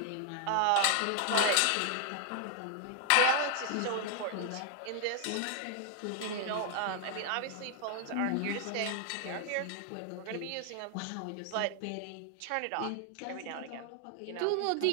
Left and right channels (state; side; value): different; both; correlation 0.00